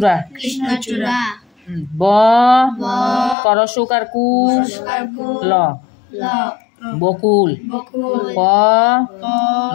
ব করসুকারকু ল বকুল প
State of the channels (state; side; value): drops out; right; at 3.4 s